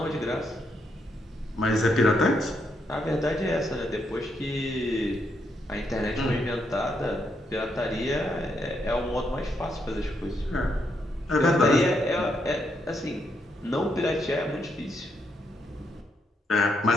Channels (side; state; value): both; normal; correlation 0.78